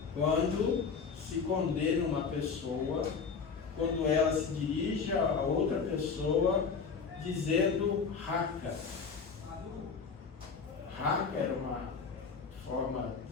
quando se condena uma pessoa, quando ela se dirige a outra pessoa dizendo raca. Raca era uma forma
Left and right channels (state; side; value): quieter; right; 5.5 dB